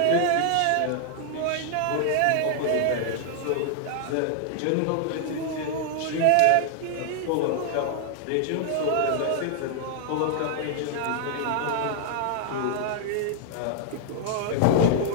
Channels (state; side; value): different; both; correlation 0.00